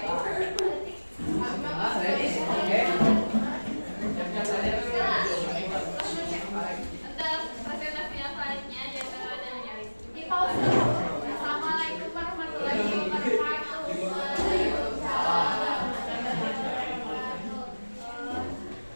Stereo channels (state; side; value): inverted; both; correlation -1.00